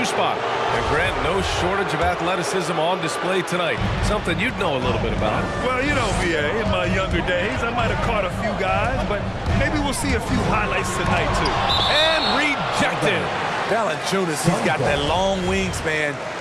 spot. And Grant, no shortage of athleticism on display tonight. Something you'd know a little bit about. Well, you know, VA, in my younger days, I might have caught a few guys, but maybe we'll see a few highlights tonight, too. And rejected. Valanciunas, he's got that long wingspan.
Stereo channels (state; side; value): identical; both; correlation 1.00